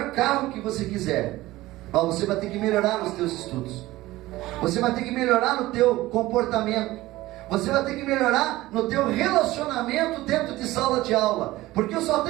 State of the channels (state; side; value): quieter; left; 17.6 dB